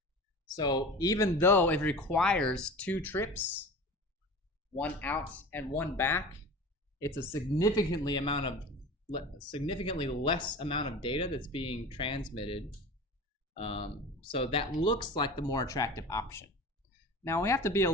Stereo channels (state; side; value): normal; both; correlation 0.35